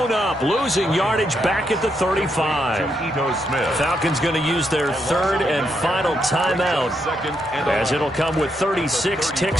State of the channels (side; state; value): both; normal; correlation 0.79